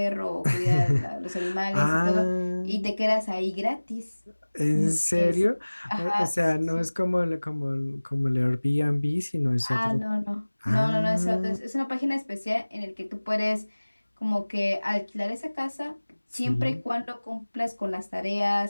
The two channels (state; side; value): inverted; both; correlation -1.00